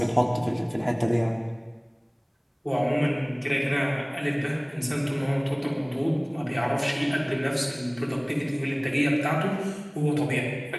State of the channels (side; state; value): both; identical; correlation 1.00